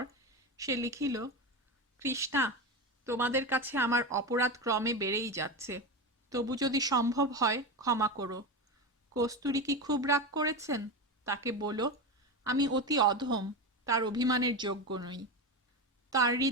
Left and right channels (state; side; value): normal; both; correlation 0.19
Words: সে লিখিল, কৃষ্ণা, তোমাদের কাছে আমার অপরাধ ক্রমে বেড়েই যাচ্ছে, তবু যদি সম্ভব হয় ক্ষমা করো। কস্তুরী কি খুব রাগ করেছেন? তাকে বলো আমি অতি অধম, তার অভিমানের যোগ্য নই। তার